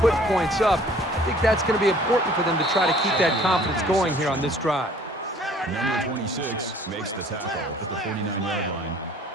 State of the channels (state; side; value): normal; both; correlation 0.54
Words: put points up. I think that's going to be important for them to try to keep that confidence going here on this drive. Number 26 makes the tackle at the 49-yard line.